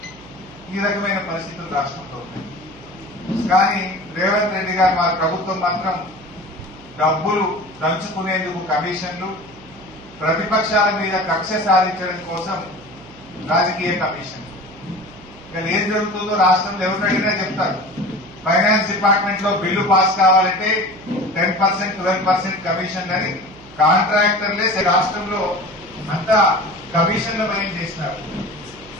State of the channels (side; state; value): right; noise; hum, 21 dB below the sound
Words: ఈ రకమైన పరిస్థితులు రాష్ట్రంలో ఉన్నాయి. కానీ రేవంత్ రెడ్డి గారు మా ప్రభుత్వం మాత్రం డబ్బులు దంచుకునేందుకు కమిషన్లు, ప్రతిపక్షాల మీద కక్ష సాధించడం కోసం రాజకీయ కమిషన్. ఇక్కడ ఏం జరుగుతుందో రాష్ట్రంలో ఎవరు అడిగినా చెప్తారు. ఫైనాన్స్ డిపార్ట్మెంట్ లో బిల్లు పాస్ కావాలంటే 10%, 12% కమిషన్ అని కాంట్రాక్టర్లే రాష్ట్రంలో అంతా కమిషన్ల భయం చేసినారు.